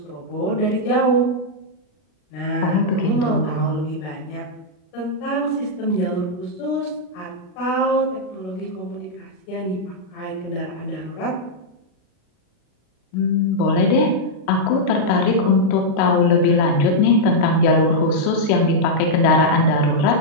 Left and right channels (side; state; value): right; late; 40 ms